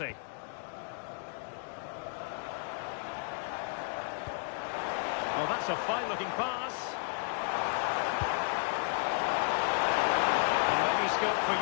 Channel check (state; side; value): silent; right; 56 dB below the other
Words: Well, that's a fine-looking pass. And maybe scope for